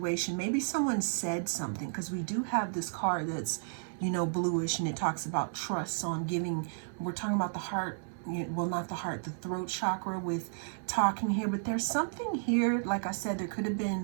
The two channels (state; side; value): silent; left; 56 dB below the other